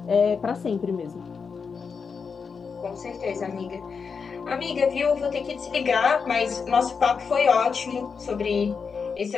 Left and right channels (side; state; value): right; quieter; 5.6 dB